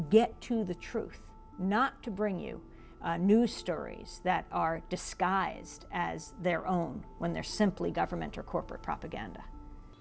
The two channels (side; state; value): both; identical; correlation 1.00